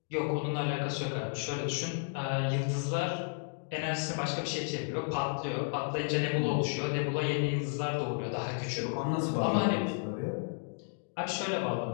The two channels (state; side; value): silent; right; digital silence